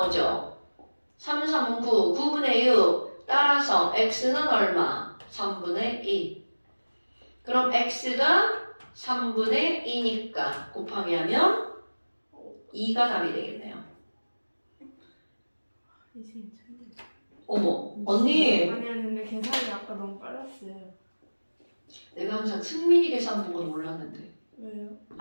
3, 3은 9, 9분의 6. 따라서 x는 얼마? 3분의 2. 그럼 x가 3분의 2니까 곱하기 하면 2가 답이 되겠네요. 이승이 천재. 어머, 언니. 아니 근데 계산이 아까 너무 빨랐어요. 내가 항상 승민이 계산 보고 놀랐는데. 왜요?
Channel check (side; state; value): both; inverted; correlation -1.00